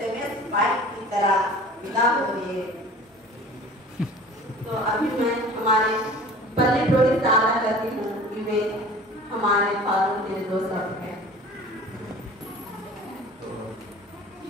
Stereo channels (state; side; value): normal; both; correlation 0.43